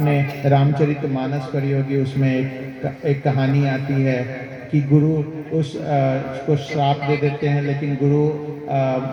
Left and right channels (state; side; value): identical; both; correlation 1.00